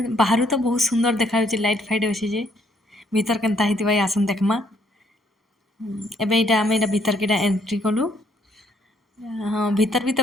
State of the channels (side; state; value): both; normal; correlation 0.68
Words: ବାହାରୁ ତ ବହୁତ ସୁନ୍ଦର ଦେଖାଯାଉଛି, ଲାଇଟ୍ ଫାଇଟ୍ ଅଛି ଯେ ଭିତର କେନ୍ତା ହେଇଥିବା ଆସୁନ୍ ଦେଖମା। ଏବେ ଏଇଟା ଆମେ ଏଇଟା ଭିତରକେ ଏଇଟା ଏଣ୍ଟ୍ରି କଲୁ। ହଁ ଭିତର ବି ତ